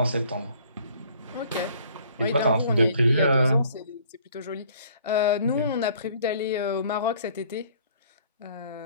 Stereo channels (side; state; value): both; inverted; correlation -0.58